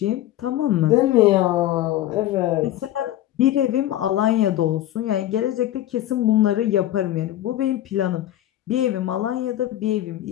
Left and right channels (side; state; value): right; quieter; 13.4 dB